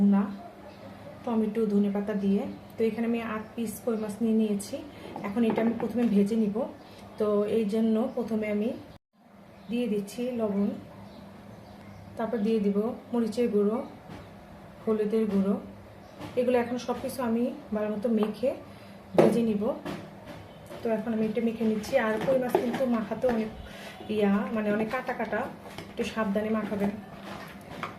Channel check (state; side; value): identical; both; correlation 1.00